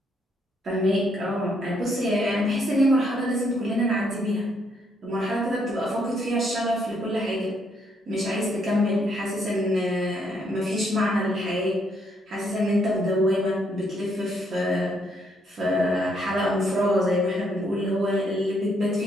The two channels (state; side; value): normal; both; correlation 0.72